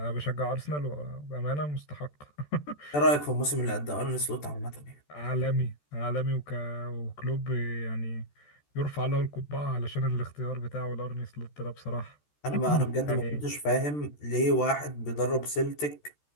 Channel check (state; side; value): late; right; 14 ms